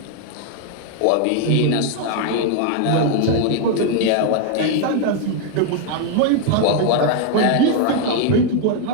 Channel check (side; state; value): both; different; correlation 0.00